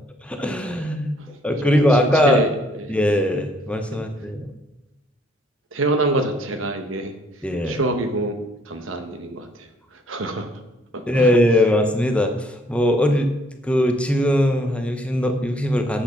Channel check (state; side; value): normal; both; correlation 0.64